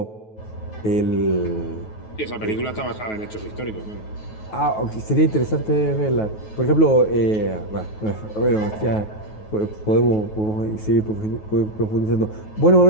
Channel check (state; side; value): late; right; 9.3 ms